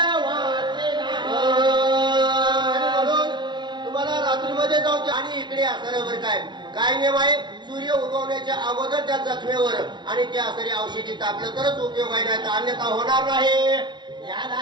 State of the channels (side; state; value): left; late; 0.22 ms